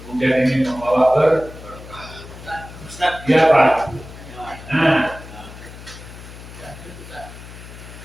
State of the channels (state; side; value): noise; left; hum, 15 dB below the sound